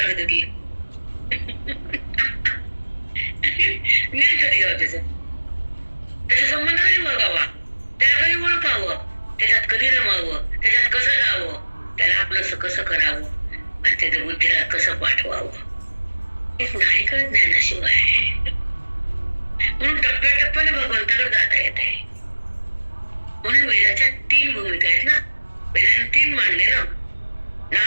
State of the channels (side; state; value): both; inverted; correlation -1.00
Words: होती. ज्ञान कधी गाव त्याचा संबंध कधी बघावा, त्याला कधी ओळखावं, त्याच्यात कधी रमावं, त्याच्यात कसं जावं, त्याला आपलं कसं करावं, आणि त्याच्या बुद्धीला कसं पाठवावं, एक नाही कळत ज्ञानाशिवाय. म्हणून टप्प्याटप्प्याने भगवंताकडे जाता येते. भूमिका आहेत ना. वेदांत 3 मांडले ना,